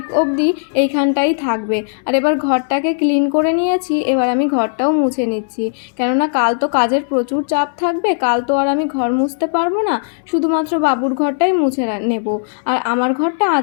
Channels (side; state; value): right; silent; digital silence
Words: অবধি এইখানটাই থাকবে। আর এবার ঘরটাকে ক্লিন করে নিয়েছি, এবার আমি ঘরটাও মুছে নিচ্ছি, কেননা কাল তো কাজের প্রচুর চাপ থাকবে। কাল তো আর আমি ঘর মুছতে পারবো না, শুধুমাত্র বাবুর ঘরটাই মুছে নেব। আর আমার ঘরটা